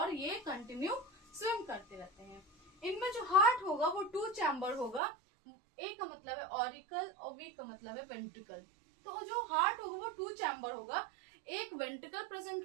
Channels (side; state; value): left; drops out; at 5.0 s